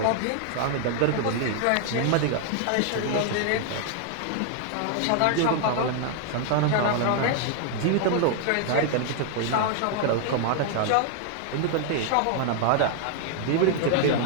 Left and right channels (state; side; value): different; both; correlation 0.00